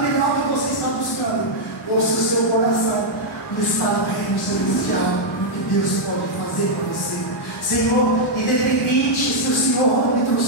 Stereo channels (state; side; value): normal; both; correlation -0.04